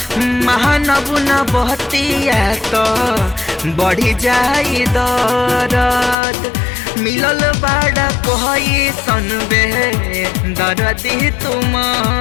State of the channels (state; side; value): drops out; right; at 6.2 s